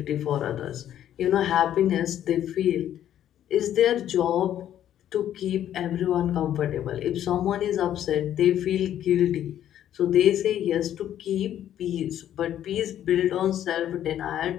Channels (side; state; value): right; quieter; 11.1 dB